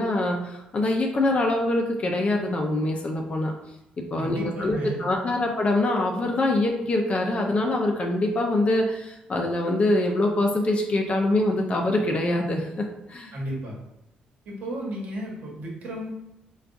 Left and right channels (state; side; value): normal; both; correlation 0.78